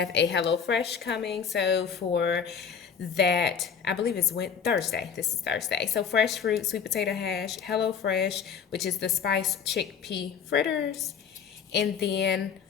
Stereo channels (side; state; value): right; quieter; 7.1 dB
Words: a HelloFresh coming. So for that, I believe it's Thursday. This is Thursday. So fresh fruit, sweet potato hash, HelloFresh, which is the spiced chickpea fritters. And then